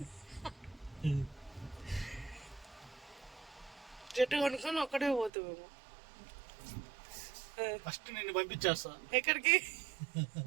జట్టు కొనుక్కొని ఒక్కడే పోతామేమో ఫస్ట్ నిన్ను పంపించేస్తా ఎక్కడికి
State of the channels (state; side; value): drops out; left; at 5.3 s